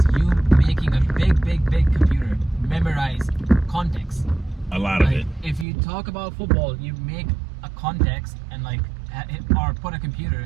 you making a big computer memorize context. A lot of Like it. if you talk about football, you make a context and or put a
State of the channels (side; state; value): left; drops out; at 5.7 s